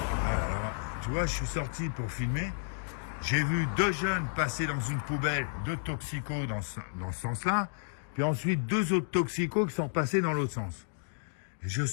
Voilà, alors, tu vois, je suis sorti pour filmer. J'ai vu 2 jeunes passer dans une poubelle, 2 toxicos dans ce sens-là. Puis ensuite, 2 autres toxicos qui sont passés dans l'autre sens. Et je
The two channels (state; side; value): silent; right; digital silence